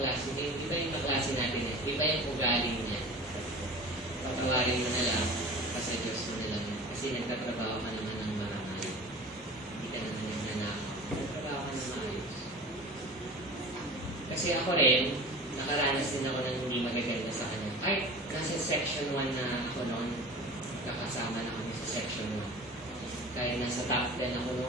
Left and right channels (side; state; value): both; normal; correlation 0.38